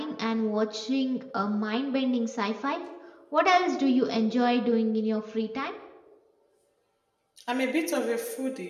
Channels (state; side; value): identical; both; correlation 1.00